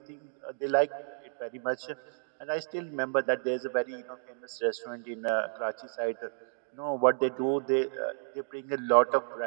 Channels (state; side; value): silent; left; digital silence